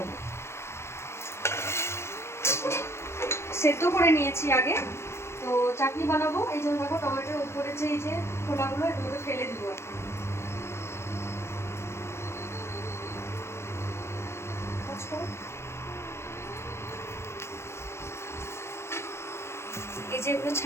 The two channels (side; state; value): right; late; 0.13 ms